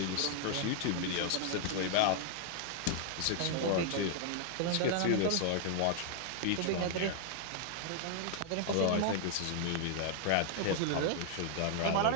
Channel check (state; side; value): different; both; correlation 0.00